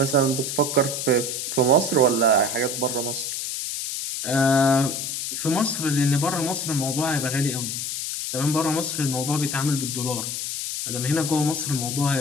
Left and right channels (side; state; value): left; noise; hiss, 3 dB below the sound